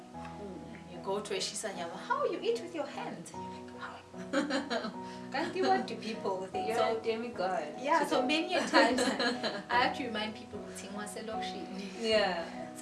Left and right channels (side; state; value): both; identical; correlation 1.00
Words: You go to a Shisanyama, how you eat with your hands? And you're like, wow. Can't you what do people think? You're a demigod. Yeah, so many a times I have to remind people, yeah.